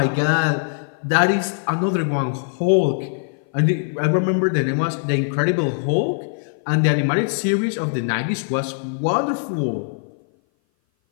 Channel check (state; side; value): silent; right; 58 dB below the other